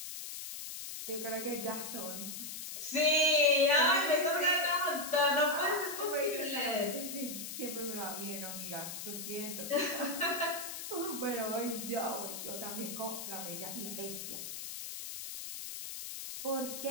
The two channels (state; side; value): noise; left; hiss, 7 dB below the sound